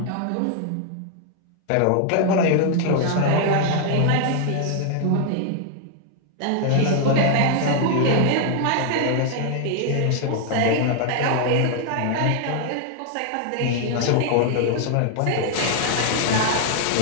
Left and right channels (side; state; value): both; different; correlation 0.00